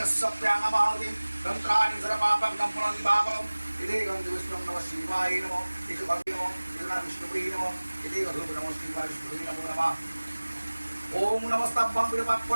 तंत्राणि सर्वपापग्नं पुनर्विभागम् इति गन्धविष्णुं नमः शिवाय नमः इति भक्तिनमो इति विष्णुवे नमः इति गन्धर्व नमः शिवाय विष्णुवे नमो नमः ओम नमस्तभ्यं विरूपाक्ष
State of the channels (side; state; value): both; inverted; correlation -1.00